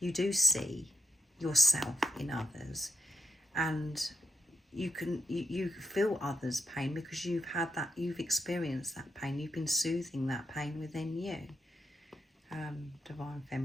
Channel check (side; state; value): both; normal; correlation 0.77